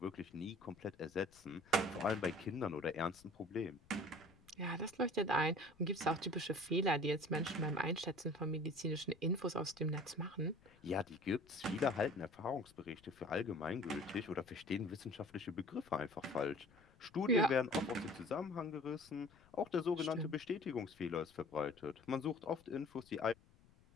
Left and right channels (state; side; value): noise; left; rumble, 27 dB below the sound